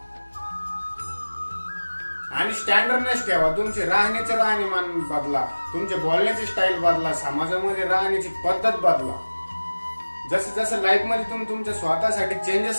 आणि स्टँडर्डनेस ठेवा. तुमचे राहण्याचे राहणीमान बदला, तुमचे बोलण्याची स्टाईल बदला, समाजामध्ये राहण्याची पद्धत बदला. जसं जसं लाईफ मध्ये तुम्ही तुमच्या स्वतःसाठी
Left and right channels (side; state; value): both; inverted; correlation -1.00